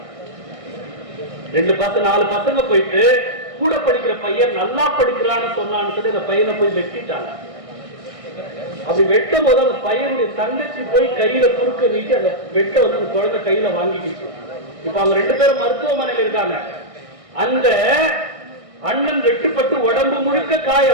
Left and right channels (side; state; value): left; late; 1.6 ms